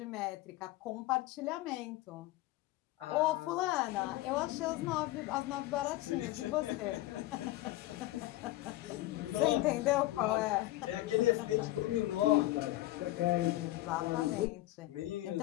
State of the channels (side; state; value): right; quieter; 16.8 dB